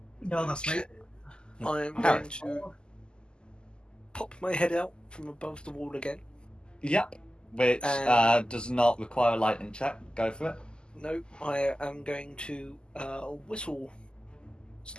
No, that's me. I'm going to pop my head out from above the wall again. Yep. Which does not require a lightning check. Go for it. No, I am going to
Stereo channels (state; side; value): late; right; 0.048 ms